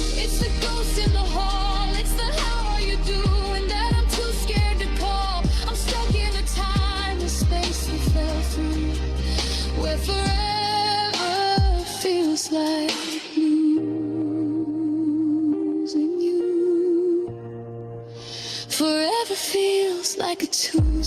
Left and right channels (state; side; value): identical; both; correlation 1.00